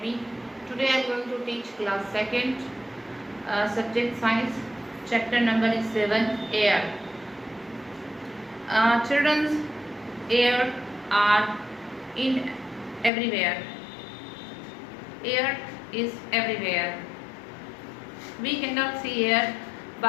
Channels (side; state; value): right; drops out; at 13.1 s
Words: Today I am going to teach class 2nd, subject science, chapter number is 7, air. Children's air are in everywhere. Air is everywhere. We cannot see air,